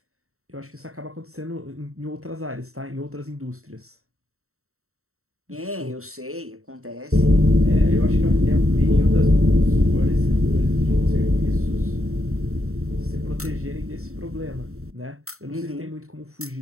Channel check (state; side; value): late; left; 0.63 ms